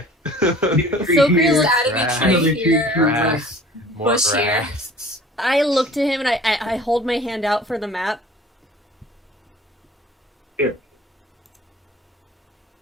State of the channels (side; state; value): both; normal; correlation 0.47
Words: So Just adding a Grass, tree Another here. tree, grass, more bush here. grass. I look to him and I hold my hand out for the map. Here.